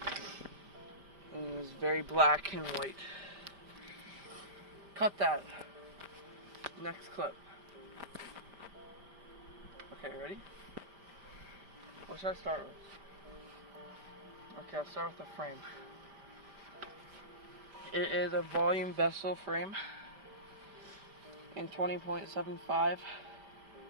And it was very black and white. Cut that. Next clip. Okay, ready? What should I start with? Okay, I'll start with the frame. It is a volume vessel frame in 20.75.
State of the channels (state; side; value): late; left; 5.0 ms